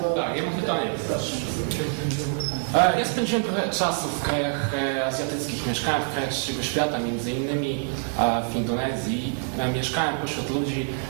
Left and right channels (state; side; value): silent; left; 57 dB below the other